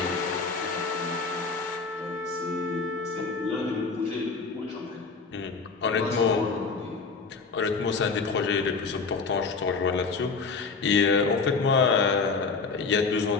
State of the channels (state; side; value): quieter; right; 4.6 dB